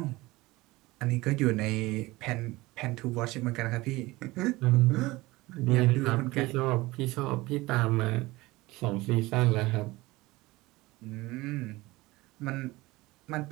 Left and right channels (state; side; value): quieter; left; 20.5 dB